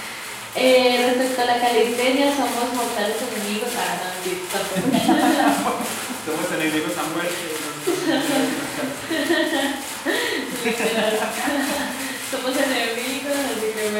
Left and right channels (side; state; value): both; identical; correlation 1.00